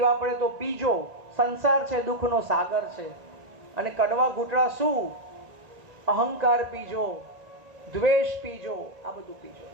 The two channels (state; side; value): late; left; 1.9 ms